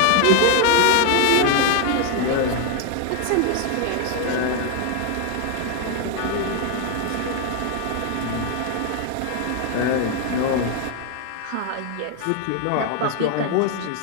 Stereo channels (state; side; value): different; both; correlation 0.00